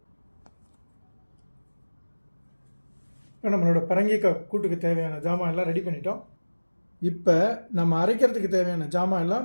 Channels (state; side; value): inverted; both; correlation -1.00